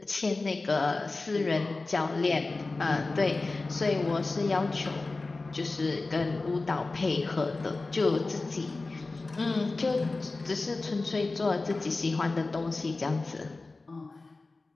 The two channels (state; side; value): quieter; right; 3.5 dB